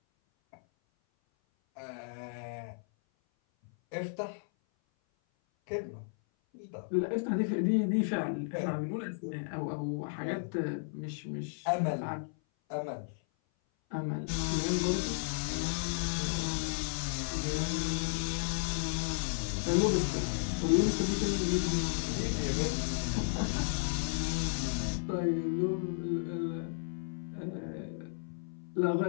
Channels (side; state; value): right; silent; 55 dB below the other